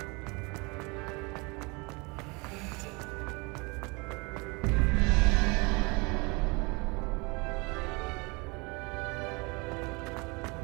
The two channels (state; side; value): quieter; left; 28.4 dB